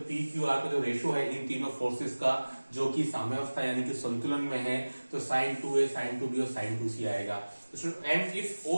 पी क्यू आर का जो रेशियो है इन तीनों फोर्सेस का जो कि साम्यावस्था यानी कि संतुलन में है, तो साइन 2a साइन 2b और साइन 2c आएगा। And if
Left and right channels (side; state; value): both; inverted; correlation -1.00